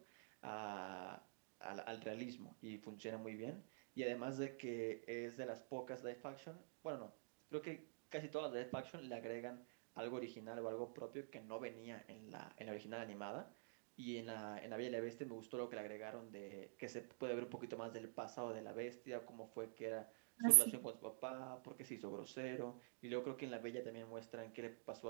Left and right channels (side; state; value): left; silent; digital silence